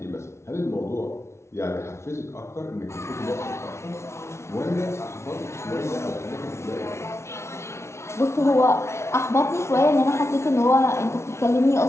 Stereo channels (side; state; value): right; late; 0.13 ms